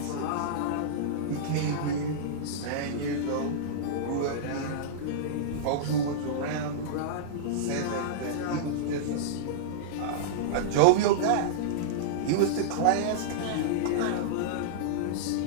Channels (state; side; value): different; both; correlation -0.03